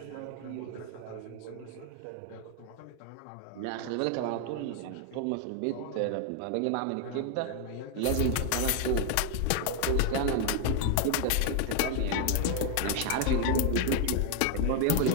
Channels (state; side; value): different; both; correlation 0.01